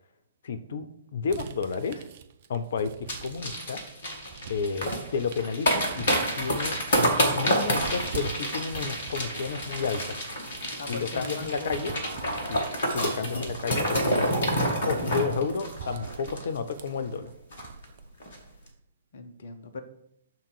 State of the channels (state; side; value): inverted; both; correlation -0.55